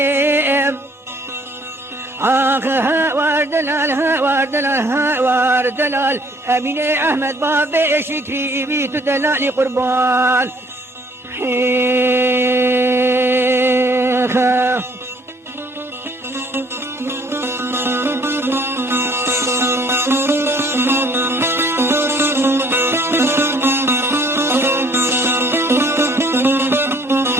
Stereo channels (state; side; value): normal; both; correlation 0.59